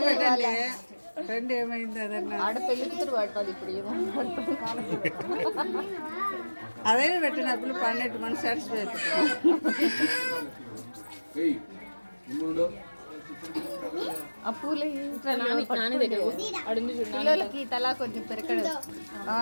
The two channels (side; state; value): both; inverted; correlation -1.00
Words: ట్రెండ్ ఏమైంది అదన్నా ఆడ పెళ్లి కూతురు పడుతుంది ఇప్పుడు ఏమో అదే పెట్టినప్పుడు పన్నెట్టు మన సాటిస్ఫై ఆ పూలు నాని దగ్గర అడుంది పిల్లలకి తలా కొంచెం పెరకడు